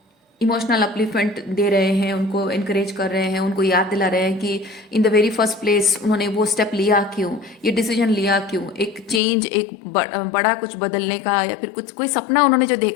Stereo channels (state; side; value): drops out; right; at 9.2 s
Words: इमोशनल अपलिफ्टमेंट दे रहे हैं, उनको इनकरेज कर रहे हैं, उनको याद दिला रहे हैं कि in the very first place उन्होंने वो स्टेप लिया क्यों, ये डिसीजन लिया क्यों, एक चेंज, एक बड़ा कुछ बदलने का, या फिर कुछ कोई सपना उन्होंने जो